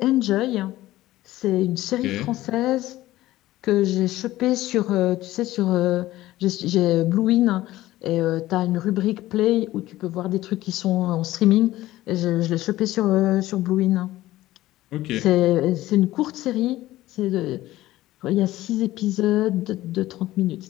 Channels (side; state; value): right; quieter; 16.0 dB